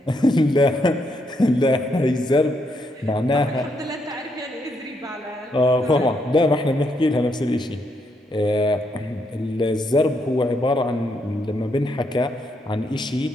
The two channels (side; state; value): both; normal; correlation 0.77